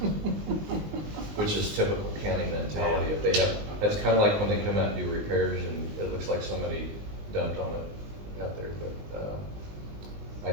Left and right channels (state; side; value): late; left; 20 ms